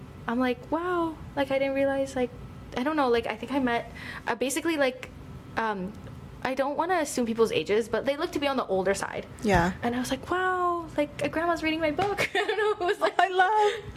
I'm like, wow, like I didn't realize, like, I don't know, like I think I met basically like I don't want to assume people's ages, but they look to be on the older side. Yeah. And I was like, wow, like a grandma's reading my book. I don't know. It was like,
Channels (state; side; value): identical; both; correlation 1.00